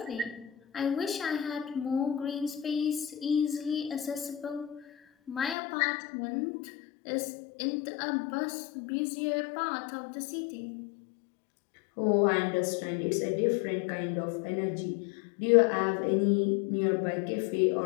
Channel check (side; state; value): right; drops out; at 5.6 s